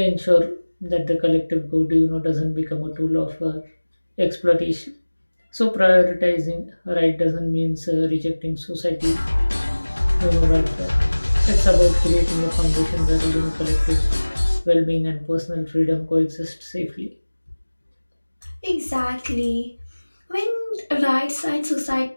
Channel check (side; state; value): both; inverted; correlation -1.00